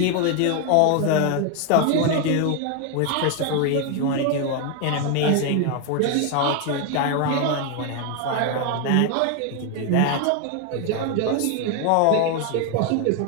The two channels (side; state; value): both; different; correlation 0.01